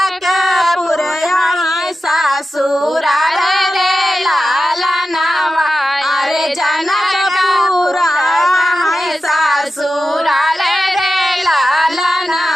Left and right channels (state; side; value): normal; both; correlation 0.92